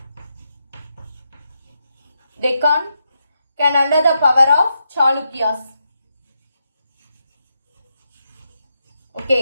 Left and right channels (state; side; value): inverted; both; correlation -0.84